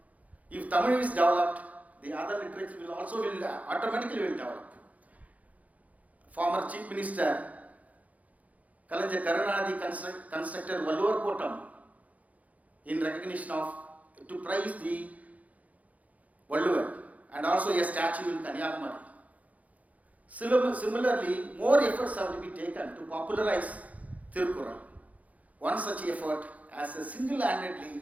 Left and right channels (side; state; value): left; late; 0.072 ms